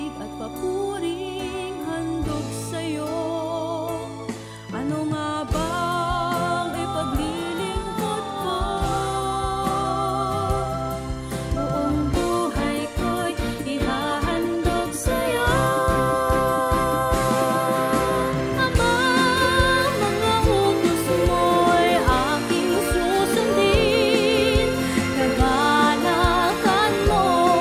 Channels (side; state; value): both; identical; correlation 1.00